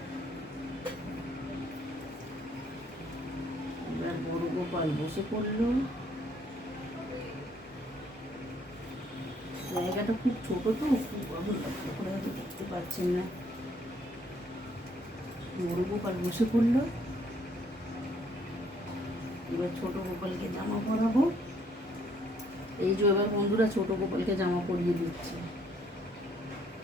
এবার বড় গোপাল বসে পড়লো। জায়গাটা খুব ছোট তো, খুব করে হয়তো দেখতে পাচ্ছেন না। বড় গোপাল বসে পড়লো। এবার ছোট গোপালকে জামা পরাবো। এই যে এবার বন্ধুরা ছোট গোপালকে জামা পরিয়ে দিচ্ছি।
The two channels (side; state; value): both; normal; correlation 0.66